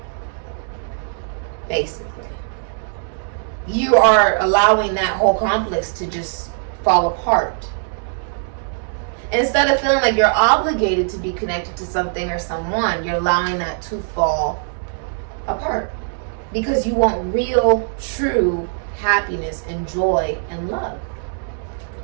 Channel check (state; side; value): silent; left; digital silence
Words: Basically. You are allowing that whole complex to just fall apart. Instead of feeling like you're obligated to be connected to something or someone, you're allowing that to fall apart. Because you want real, true happiness and joy and love.